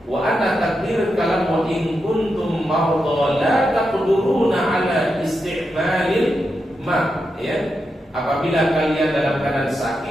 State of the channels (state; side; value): normal; both; correlation 0.87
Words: wa anna takdir kalam wa in kuntum marda la taqduruna ala isti'malil ma, ya. Apabila kalian dalam keadaan